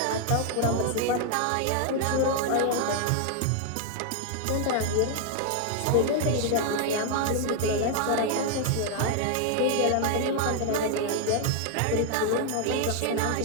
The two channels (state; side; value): different; both; correlation 0.00